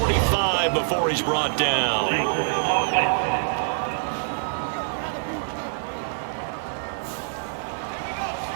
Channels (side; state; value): left; silent; digital silence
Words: before he's brought down.